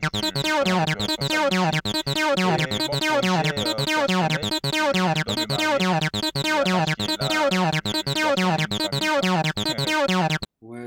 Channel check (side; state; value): both; identical; correlation 1.00